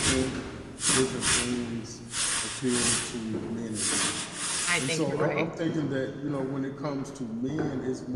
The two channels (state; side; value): identical; both; correlation 1.00